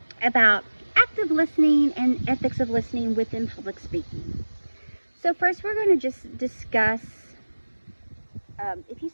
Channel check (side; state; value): both; inverted; correlation -1.00